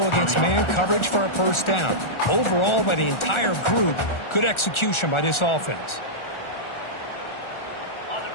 against man coverage for a 1st down. Overall, by the entire group, good execution by this offense.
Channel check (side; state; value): right; late; 1.4 ms